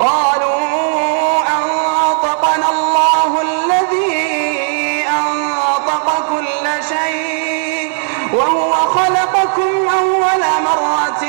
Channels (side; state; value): left; silent; digital silence